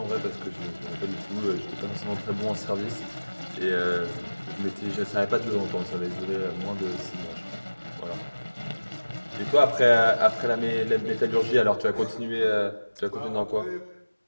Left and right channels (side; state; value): both; inverted; correlation -1.00